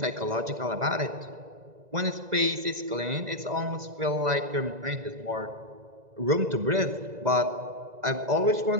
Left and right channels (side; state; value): left; late; 2.0 ms